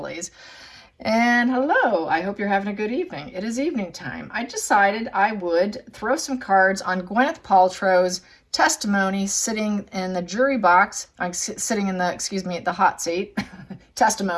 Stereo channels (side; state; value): both; identical; correlation 1.00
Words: And hello, I hope you're having a good evening. It is evening time. I decided I would throw some cards on Gwyneth Paltrow's testimony sitting in the jury box, sitting in the hot seat